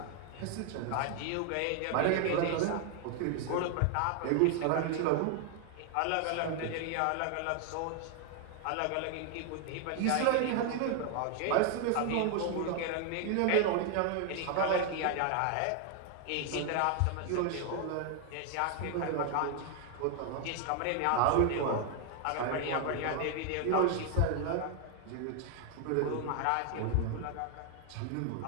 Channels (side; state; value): both; different; correlation 0.00